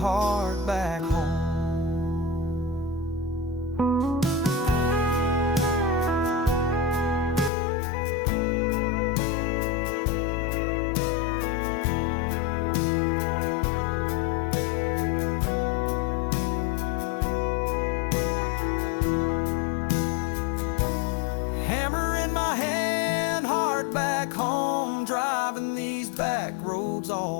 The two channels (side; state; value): right; drops out; at 7.5 s